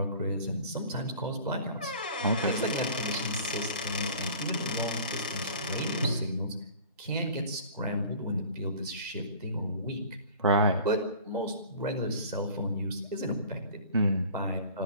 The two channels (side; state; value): both; inverted; correlation -0.44